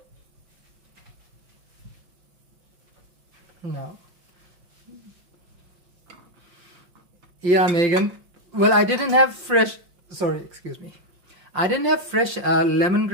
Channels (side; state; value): left; late; 5.6 ms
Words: Now, yeah, Megan. Well, I didn't have fresh, sorry, excuse me. I didn't have fresh